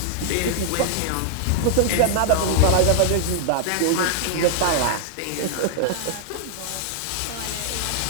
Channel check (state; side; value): different; both; correlation -0.01